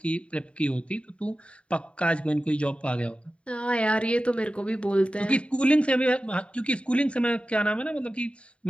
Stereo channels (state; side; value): late; right; 0.060 ms